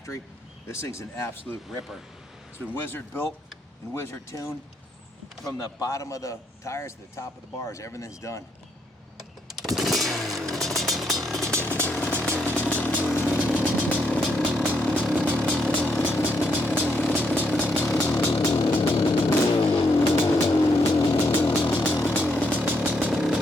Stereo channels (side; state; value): both; normal; correlation 0.76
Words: This thing's an absolute ripper. It's been Wizard built and Wizard tuned from the bottom of the tires to the top of the bars. Everything's done.